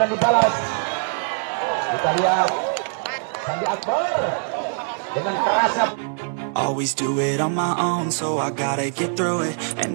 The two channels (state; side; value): silent; left; 64 dB below the other